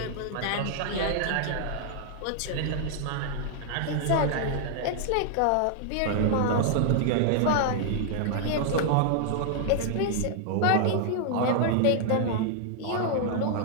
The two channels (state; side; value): different; both; correlation 0.00